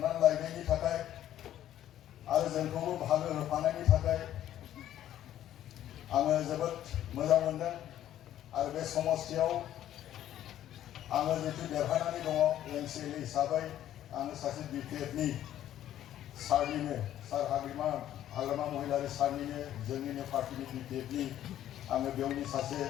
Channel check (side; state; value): right; quieter; 12.0 dB